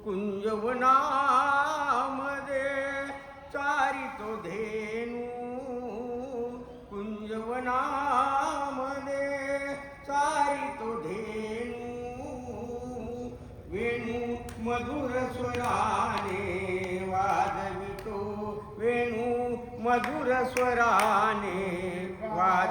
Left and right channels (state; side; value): identical; both; correlation 1.00